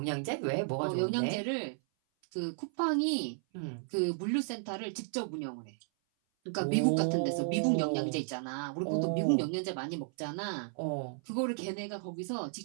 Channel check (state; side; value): silent; left; 55 dB below the other